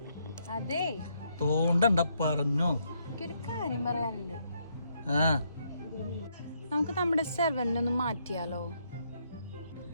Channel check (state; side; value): inverted; both; correlation -0.74